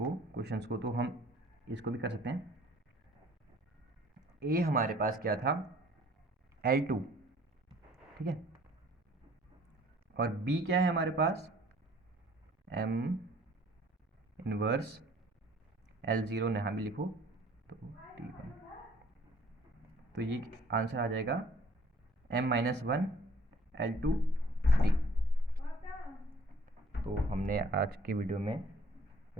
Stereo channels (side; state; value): both; normal; correlation 0.56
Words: क्वेश्चंस को, तो हम इसको भी कर सकते हैं। ए हमारे पास क्या था, L2, ठीक है, और बी क्या है हमारे पास, M इनवर्स L0, यहाँ भी लिखो तो T1। तो ये आंसर आ जाएगा M-1 L2 D। तो हमने आज की वीडियो में